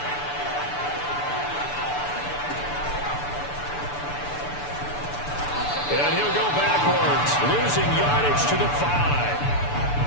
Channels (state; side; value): late; right; 6.9 ms